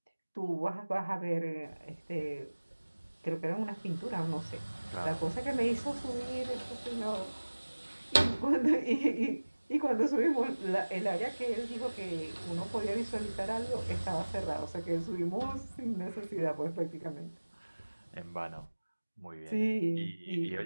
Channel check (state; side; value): inverted; both; correlation -1.00